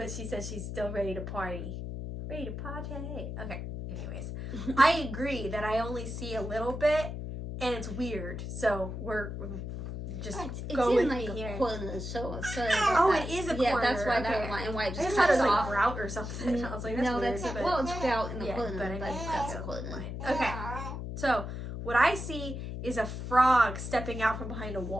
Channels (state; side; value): noise; left; hum, 6 dB below the sound